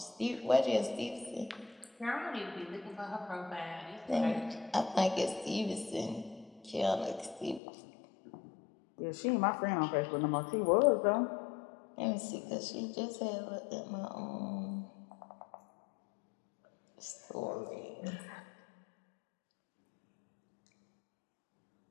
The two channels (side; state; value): right; drops out; at 7.6 s